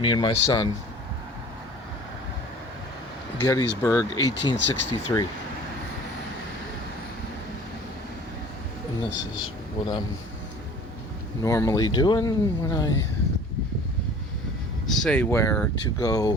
and my son. Gettysburg, 1863. And this is what I'm normally doing when I say where to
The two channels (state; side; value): normal; both; correlation 0.46